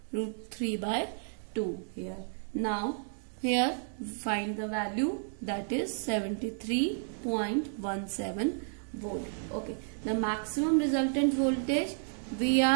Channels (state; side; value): silent; left; digital silence